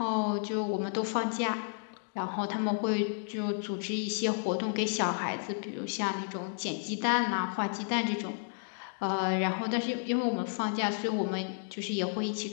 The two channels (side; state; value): right; silent; 56 dB below the other